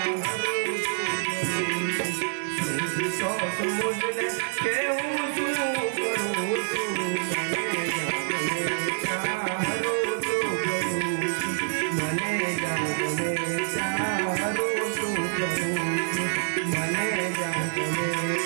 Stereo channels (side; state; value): left; silent; 60 dB below the other